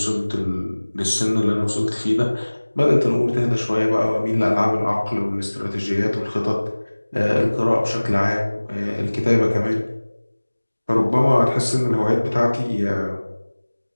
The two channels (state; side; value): inverted; both; correlation -1.00